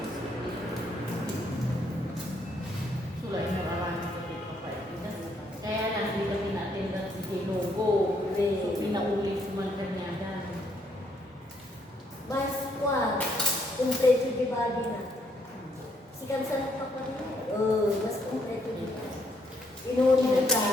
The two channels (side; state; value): both; normal; correlation 0.71